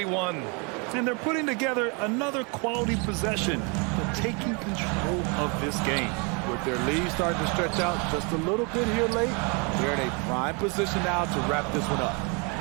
And they're putting together another quality possession, but taking control of this game. With their lead starting to stretch out just a little bit here late, they're in a prime position now to wrap this one up.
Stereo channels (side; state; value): left; quieter; 32.6 dB